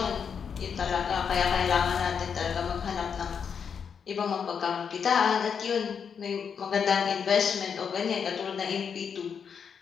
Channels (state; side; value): quieter; right; 6.8 dB